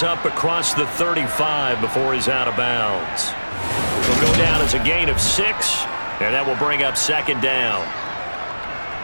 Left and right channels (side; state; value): both; inverted; correlation -1.00